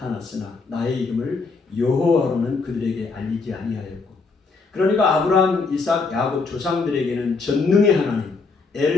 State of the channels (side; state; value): right; quieter; 4.3 dB